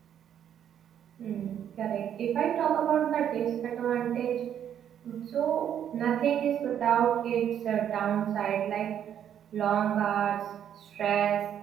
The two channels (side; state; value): left; quieter; 9.6 dB